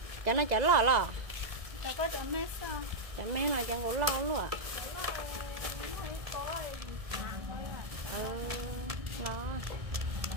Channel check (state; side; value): late; left; 1.7 ms